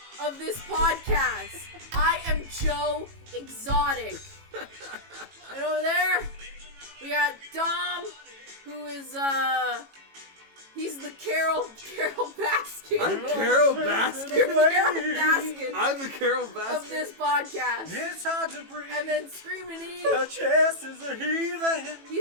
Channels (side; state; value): left; late; 18 ms